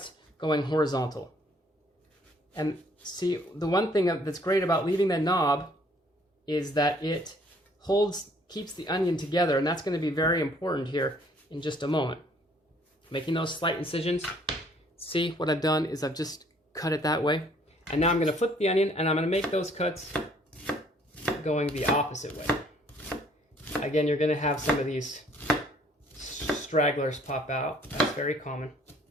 going horizontal. And see, the one thing that's great about leaving that knob is that it keeps the onion together, and that's going to be very important here in just a moment. Making those slight incisions. See, what I've done is I've just cut it that way. And now I'm going to flip the onion, and I'm going to make those cuts going the opposite way. Again, you're going to have some of these stragglers pop out. That's very common.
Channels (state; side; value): normal; both; correlation 0.61